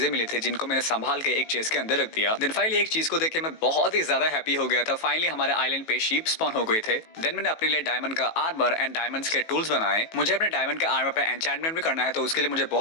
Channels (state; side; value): late; right; 18 ms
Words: मिली थी, जिनको मैंने संभाल के एक चेस्ट के अंदर रख दिया। देन फाइनली एक चीज को देख के मैं बहुत ही ज्यादा हैप्पी हो गया था। फाइनली हमारे आइलैंड पे शीप स्पॉन हो गए थे। देन मैंने अपने लिए डायमंड का आर्मर एंड डायमंड्स के टूल्स बनाए। मुझे अपने डायमंड के आर्मर पे एन्चेंटमेंट भी करना है, तो उसके लिए मुझे